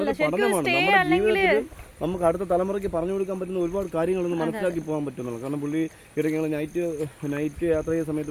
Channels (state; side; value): identical; both; correlation 1.00